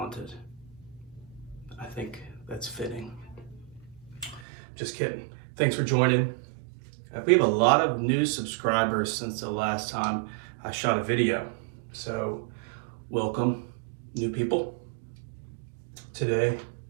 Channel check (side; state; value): left; drops out; at 4.5 s